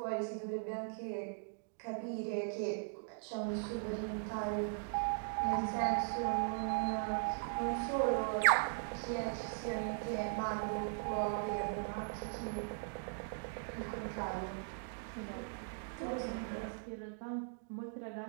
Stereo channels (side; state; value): left; silent; digital silence